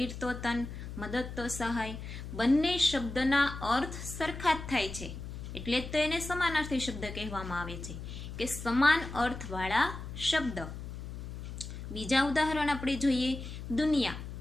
તો તન, મદદ તો સહાય. બંને શબ્દના અર્થ સરખા જ થાય છે, એટલે જ તો એને સમાનાર્થી શબ્દ કહેવામાં આવે છે, કે સમાન અર્થવાળા શબ્દ. બીજા ઉદાહરણ આપણે જોઈએ. દુનિયા.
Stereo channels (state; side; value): noise; left; hum, 9 dB below the sound